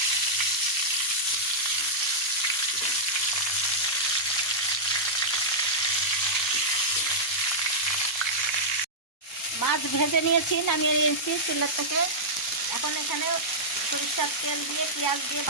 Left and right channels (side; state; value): both; normal; correlation -0.10